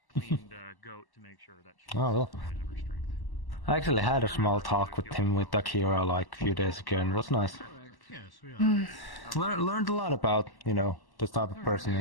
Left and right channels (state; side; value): late; right; 1.1 ms